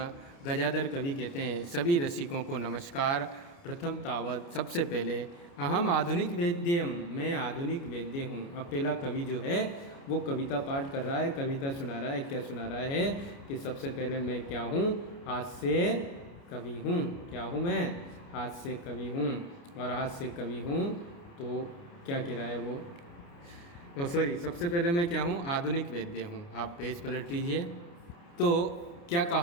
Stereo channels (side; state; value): right; late; 29 ms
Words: गजाधर कवि कहते हैं सभी रसिकों को नमस्कार। प्रथम तावत, सबसे पहले, अहम आधुनिक वेद्यम, मैं आधुनिक वेद्य हूँ। अब पहला कवि जो है वो कविता पाठ कर रहा है, कविता सुना रहा है। क्या सुना रहा है? कि सबसे पहले मैं क्या हूँ? हास्य कवि हूँ। क्या हूँ मैं? हास्य कवि हूँ। और हास्य कवि हूँ तो क्या कह रहा है वो? सबसे पहले मैं क्या हूँ? आधुनिक वेद्य हूँ। आप पेज पलट लीजिए। तो क्या